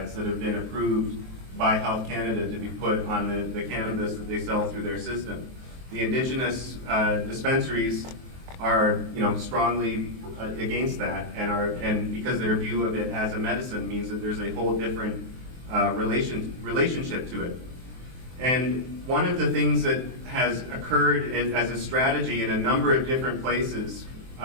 that have been approved by Health Canada to be put on the cannabis that they sell through their system. The indigenous dispensaries are, strongly against that, and because their view of it as a medicine means that there's a whole different relationship to it. And one of the things that has occurred as a strategy in a number of different places,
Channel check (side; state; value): left; late; 23 ms